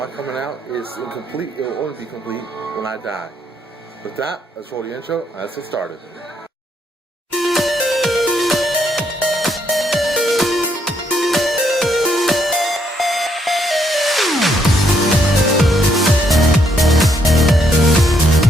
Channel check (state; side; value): normal; both; correlation 0.73